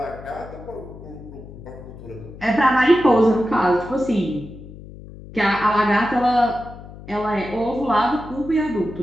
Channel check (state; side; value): noise; left; hum, 16 dB below the sound